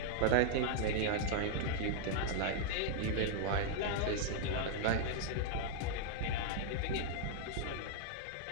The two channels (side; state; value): both; different; correlation -0.01